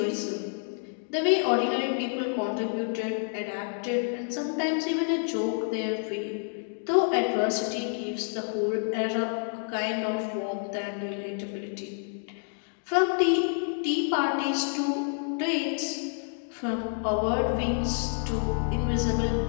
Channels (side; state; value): right; silent; 56 dB below the other